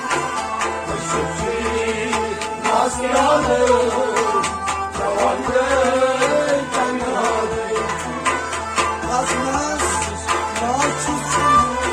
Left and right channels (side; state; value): both; identical; correlation 1.00